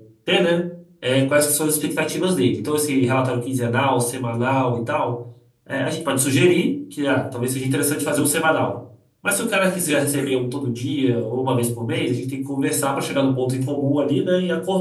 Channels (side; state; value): both; identical; correlation 1.00